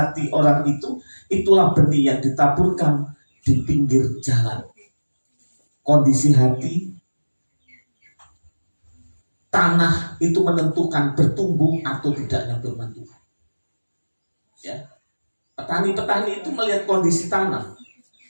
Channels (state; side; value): inverted; both; correlation -1.00